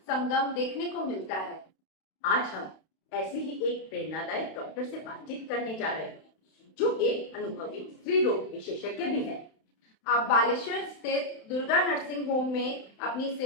संगम देखने को मिलता है। आज हम ऐसे ही एक प्रेरणादायक डॉक्टर से बातचीत करने जा रहे हैं जो एक अनुभवी स्त्री रोग विशेषज्ञ भी है। आप बालेश्वर स्थित दुर्गा नर्सिंग होम में अपनी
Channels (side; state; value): right; late; 31 ms